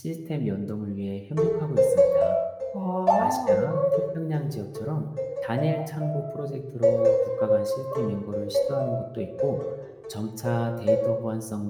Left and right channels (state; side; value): identical; both; correlation 1.00